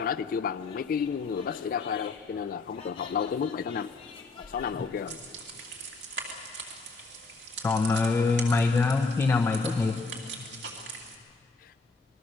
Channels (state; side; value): quieter; right; 4.0 dB